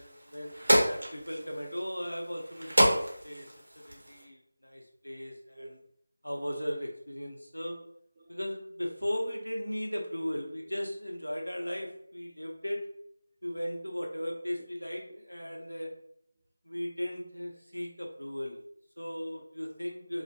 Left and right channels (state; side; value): inverted; both; correlation -0.98